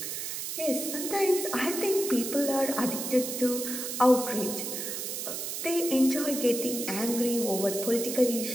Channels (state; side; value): noise; right; hiss, 4 dB below the sound